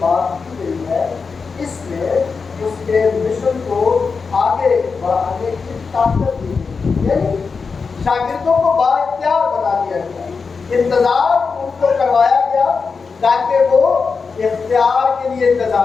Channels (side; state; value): right; quieter; 5.0 dB